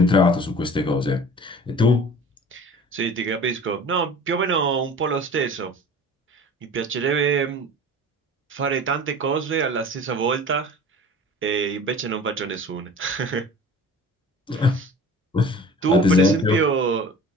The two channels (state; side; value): normal; both; correlation 0.42